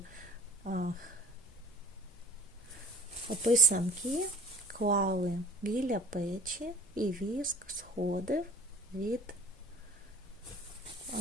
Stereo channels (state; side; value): normal; both; correlation 0.44